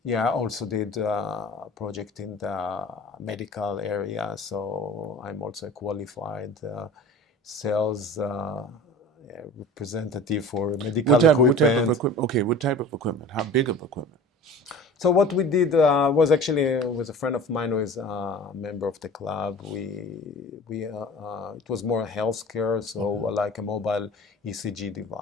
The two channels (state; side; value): normal; both; correlation 0.40